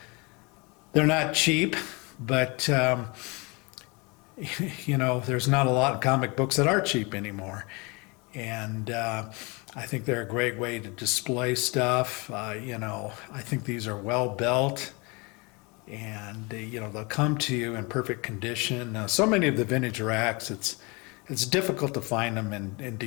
They're not cheap, but you know, there's not a lot of comic books that are cheap anymore, and I think they're a great way to display stuff. You know, I think these are well built, and you know, they'll come to you in perfect condition. So many of the vintage racks, it's difficult to find them in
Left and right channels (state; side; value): quieter; right; 28.1 dB